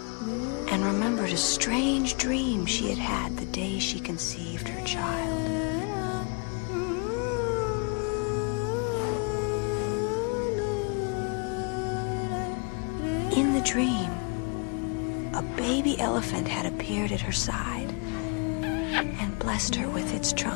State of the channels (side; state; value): right; quieter; 34.6 dB